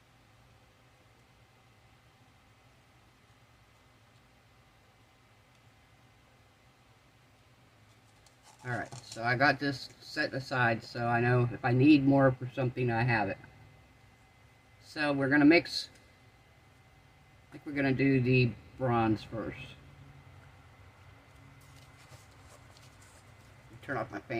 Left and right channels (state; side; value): identical; both; correlation 1.00